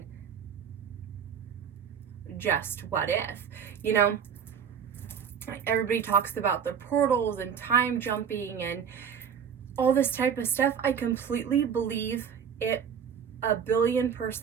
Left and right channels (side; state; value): left; quieter; 7.5 dB